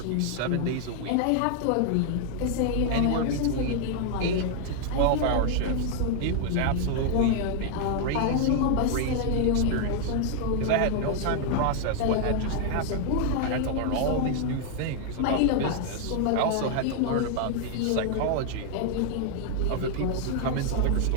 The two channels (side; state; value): both; different; correlation 0.00